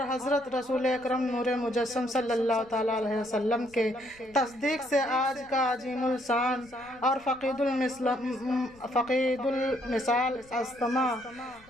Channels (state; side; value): noise; left; rumble, 27 dB below the sound